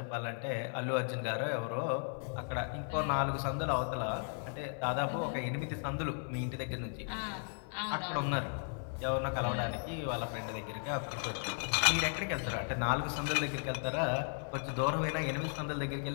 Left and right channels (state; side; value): silent; right; 54 dB below the other